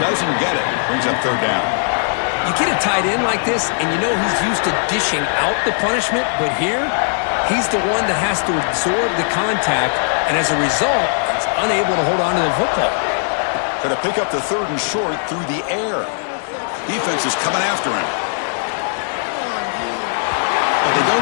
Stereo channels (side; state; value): right; silent; digital silence